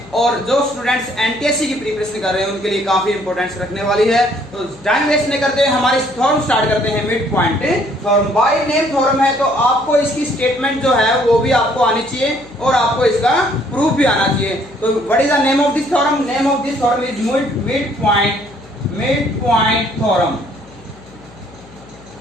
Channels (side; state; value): left; noise; hum, 23 dB below the sound